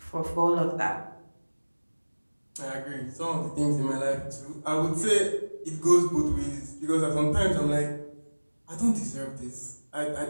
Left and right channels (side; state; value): both; inverted; correlation -1.00